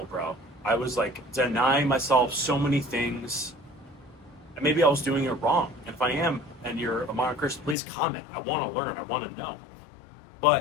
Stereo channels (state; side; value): drops out; right; at 7.8 s